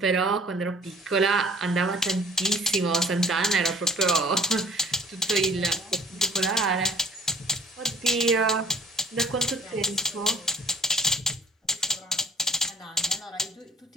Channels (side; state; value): both; normal; correlation 0.54